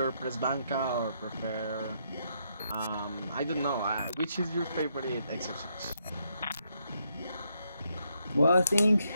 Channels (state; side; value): inverted; both; correlation -0.77